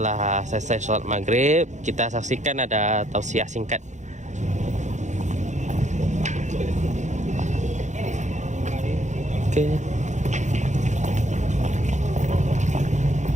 selesai sholat maghrib, kita saksikan ada tausiah singkat. Oke.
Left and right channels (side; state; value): left; late; 0.35 ms